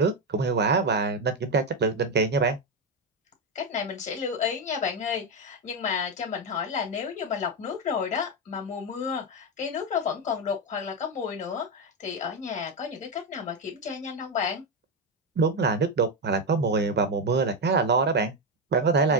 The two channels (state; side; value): normal; both; correlation 0.08